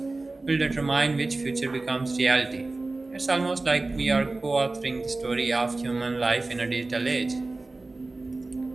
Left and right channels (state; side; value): quieter; left; 3.2 dB